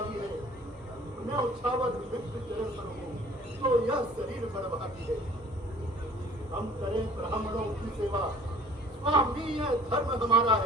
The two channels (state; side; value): normal; both; correlation 0.50